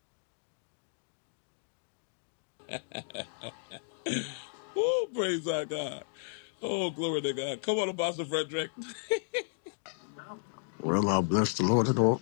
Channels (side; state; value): right; silent; digital silence